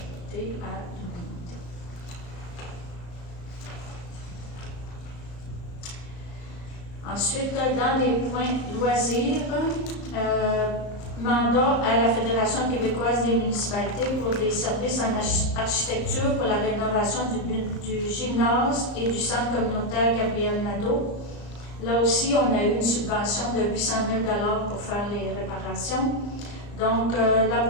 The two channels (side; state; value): right; late; 34 ms